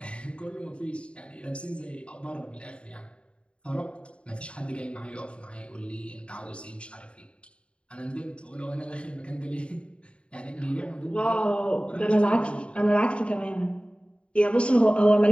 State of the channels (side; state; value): right; late; 0.058 ms